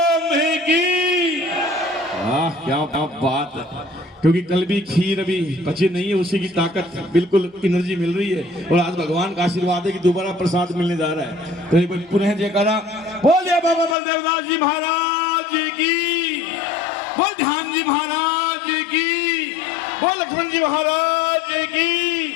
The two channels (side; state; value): right; drops out; at 14.0 s